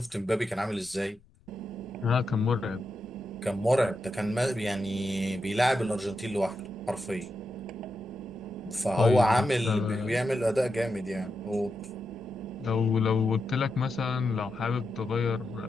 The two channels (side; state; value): left; noise; rumble, 30 dB below the sound